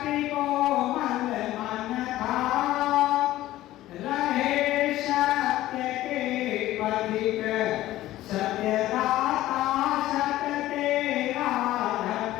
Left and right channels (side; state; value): right; quieter; 15.2 dB